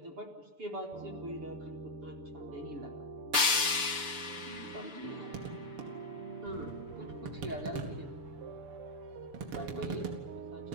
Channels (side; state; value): left; late; 6.9 ms